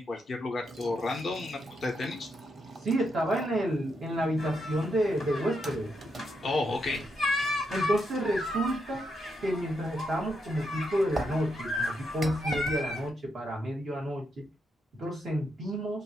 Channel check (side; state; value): both; normal; correlation 0.81